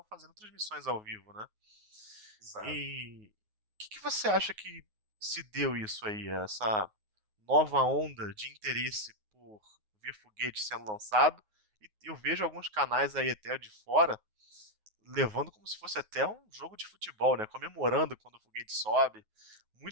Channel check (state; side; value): late; left; 9.4 ms